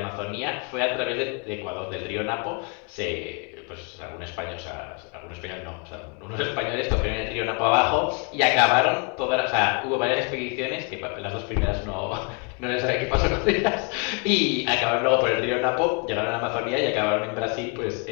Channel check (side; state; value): right; quieter; 34.1 dB